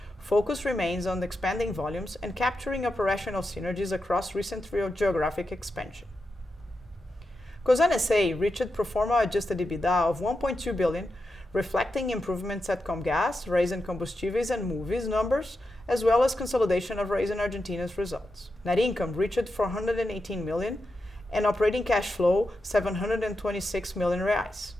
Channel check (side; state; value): both; normal; correlation 0.88